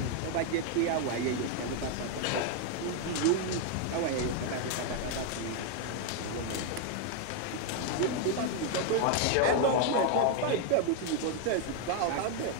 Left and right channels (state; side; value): different; both; correlation 0.00